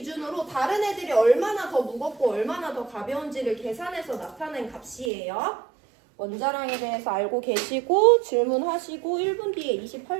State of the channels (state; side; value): drops out; left; at 5.1 s